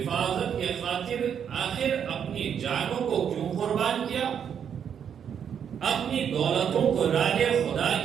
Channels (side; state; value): left; quieter; 8.1 dB